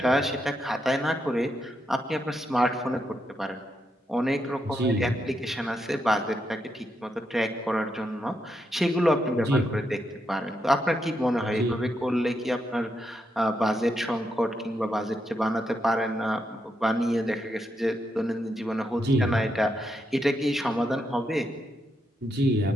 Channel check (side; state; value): both; normal; correlation 0.82